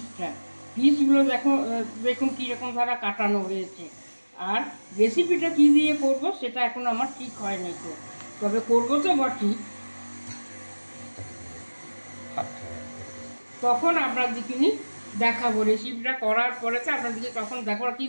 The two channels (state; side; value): inverted; both; correlation -1.00